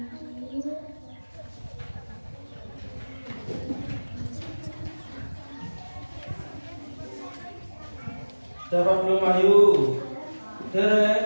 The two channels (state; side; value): inverted; both; correlation -1.00